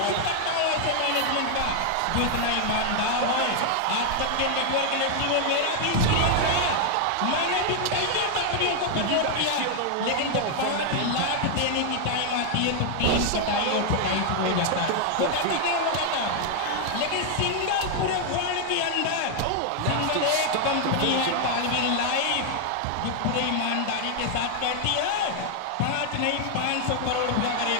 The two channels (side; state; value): both; different; correlation 0.00